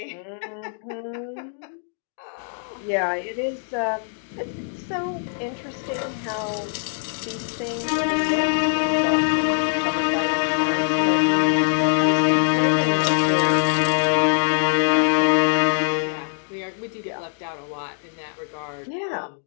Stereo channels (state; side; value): silent; right; digital silence